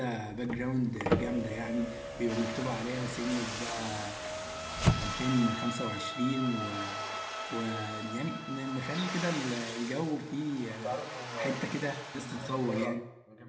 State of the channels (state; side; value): identical; both; correlation 1.00